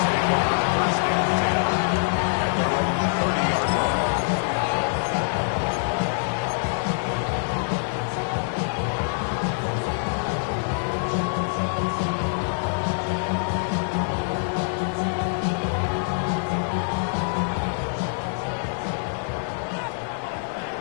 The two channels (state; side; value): silent; right; 61 dB below the other